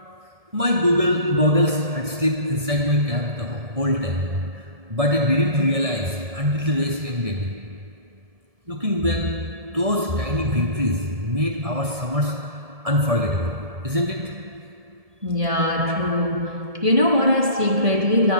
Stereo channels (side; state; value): left; late; 1.7 ms